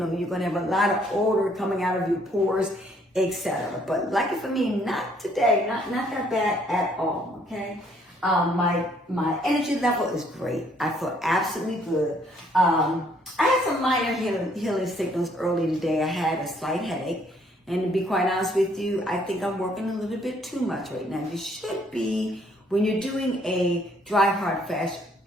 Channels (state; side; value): normal; both; correlation 0.65